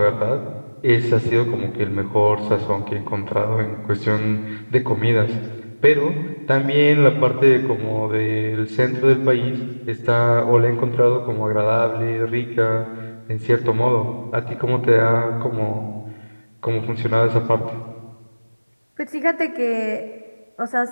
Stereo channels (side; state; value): both; inverted; correlation -1.00